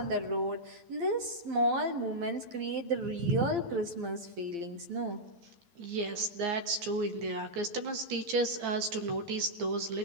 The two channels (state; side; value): late; left; 9.0 ms